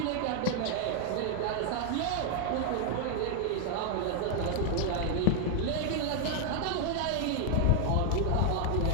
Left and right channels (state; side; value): different; both; correlation 0.00